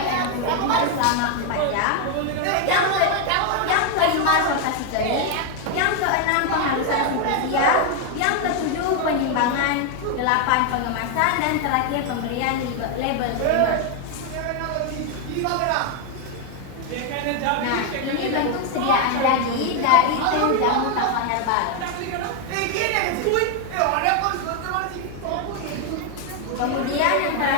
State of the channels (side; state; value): both; different; correlation 0.01